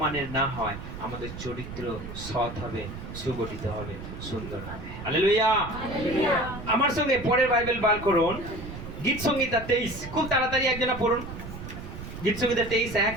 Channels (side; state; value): right; noise; rumble, 10 dB below the sound